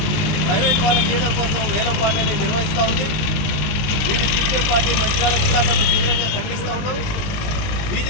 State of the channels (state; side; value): late; right; 20 ms